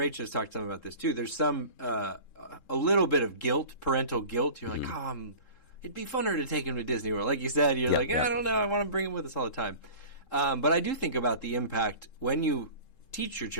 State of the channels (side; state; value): right; late; 3.7 ms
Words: has talked some about this too, there's some, a little bit of guilt, parental guilt. You're like, it'd be funner to take him to Disney World. Like you said, you're I don't know, I want to bring him with us all the time. But I do think about the impact when you teach your